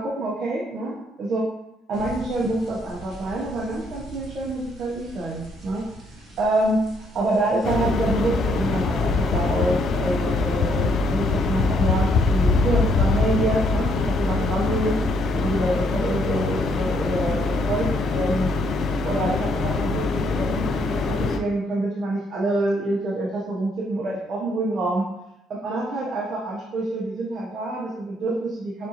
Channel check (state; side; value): normal; both; correlation 0.70